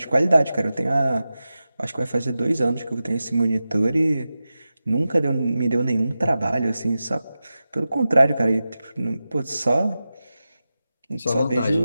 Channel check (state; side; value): inverted; both; correlation -0.93